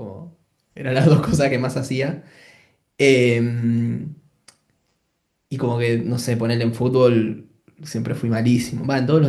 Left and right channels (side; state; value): both; identical; correlation 1.00